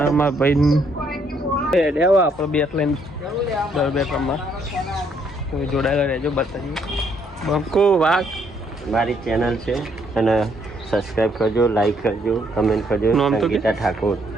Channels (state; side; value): normal; both; correlation 0.69